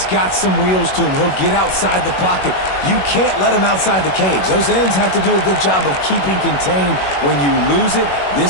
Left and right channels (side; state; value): right; late; 21 ms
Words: got some wheels to him. He'll get outside the pocket. You can't let him outside the cage. Those ends have to do a good job of keeping contained. When you lose it,